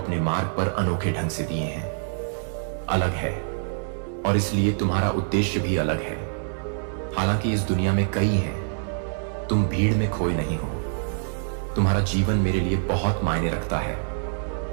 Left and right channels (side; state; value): left; silent; 61 dB below the other